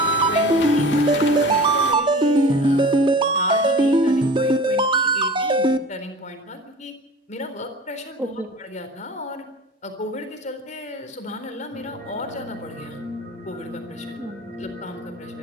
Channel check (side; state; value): both; normal; correlation 0.39